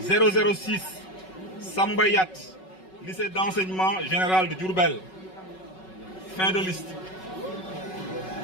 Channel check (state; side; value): late; right; 5.4 ms